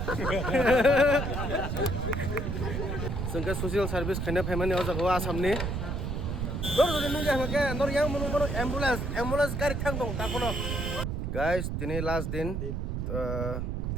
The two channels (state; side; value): noise; right; rumble, 2 dB below the sound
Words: Sengke sosial service kena pemani oja go asamni. Nor jodi nunja hake nor yang monu ambulance gari thang dong ta kono. Guys, tini last din